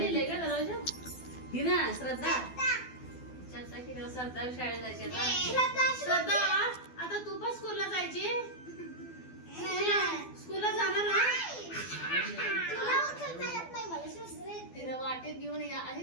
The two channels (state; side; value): late; right; 12 ms